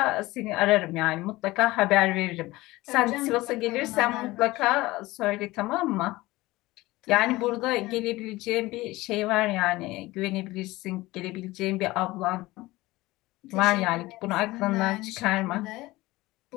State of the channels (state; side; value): quieter; right; 19.3 dB